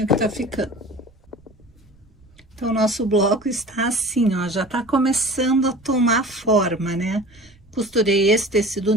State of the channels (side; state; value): right; noise; rumble, 29 dB below the sound